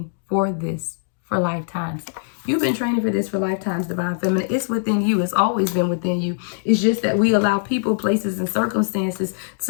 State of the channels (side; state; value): right; silent; digital silence